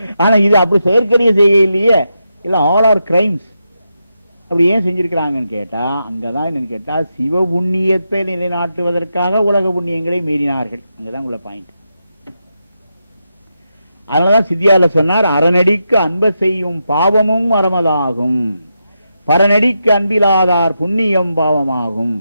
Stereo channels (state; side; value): inverted; both; correlation -0.86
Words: ஆனா இது அப்படி செயற்கரிய செய்ய இல்லையே, இல்ல ஆல் ஆர் கிரைம்ஸ். அப்படி ஏன் செஞ்சிருக்கிறாங்கன்னு கேட்டா, அங்கதான் என்னன்னு கேட்டா, சிவ புண்ணியத்தை நிலைநாட்டுவதற்காக உலக புண்ணியங்களை மீறினார்கள். அங்கதான் உள்ள பாயிண்ட். அதனாலதான் சித்தியால சொன்னார், அறநடிக்கு அன்ப செய்யும் பாவமும் அறமதாகும், பரநடிக்கு அன்பிலாதார் புண்ணியம் பாவமாகும்.